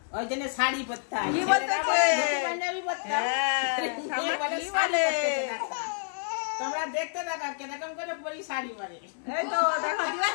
ওই জন্য শাড়ি পরতে হয়, ছেলেরা বলে ধুতি পাঞ্জাবি পরতে হয়, মেয়ে বলে শাড়ি পরতে হয়। তোমরা দেখতে দেখো কিরকম করে পরী শাড়ি পরে। এই তো দেখো দিদা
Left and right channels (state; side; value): silent; right; digital silence